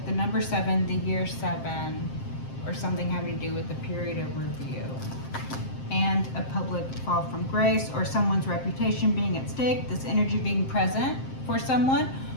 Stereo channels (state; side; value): late; right; 7.6 ms